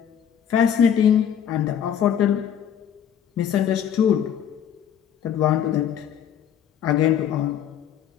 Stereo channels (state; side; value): quieter; right; 9.1 dB